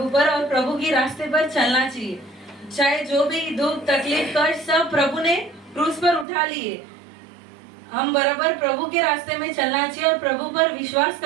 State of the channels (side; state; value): left; drops out; at 6.2 s